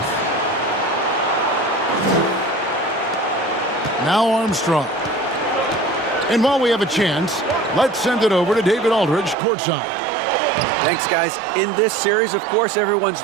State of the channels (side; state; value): left; drops out; at 9.3 s